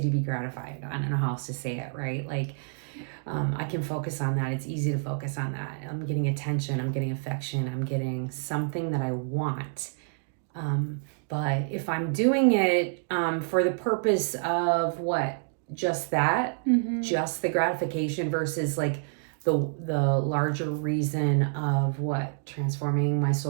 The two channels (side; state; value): left; silent; digital silence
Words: to be gratified. I don't know how else to say it, right? Like, I can focus on that. It's easy to focus on that. I'm getting attention. I'm getting affection. I'm getting something that I want. But if I'm doing it for the purpose of what? Just that? Just the gratification versus like the larger reason of what? Transforming my